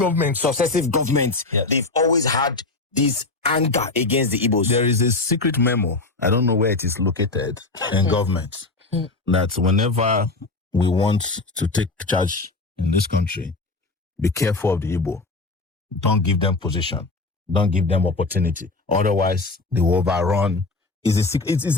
governments, yes, they've always had this anger against the Igbos? There is a secret memo, I don't know where it is located, in government, that whenever we want to take charge in this country, be careful of the Igbo. Don't give them position. Don't give them opportunity. Otherwise, they will overrun. It is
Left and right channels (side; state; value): right; quieter; 3.4 dB